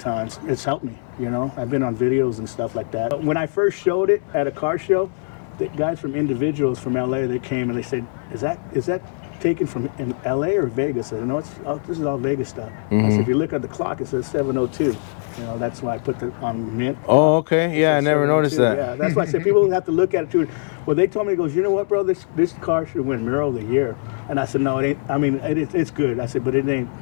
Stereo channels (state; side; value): silent; right; digital silence